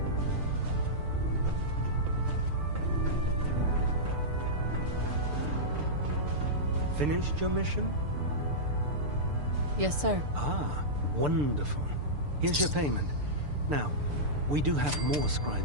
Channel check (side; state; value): left; late; 6.8 ms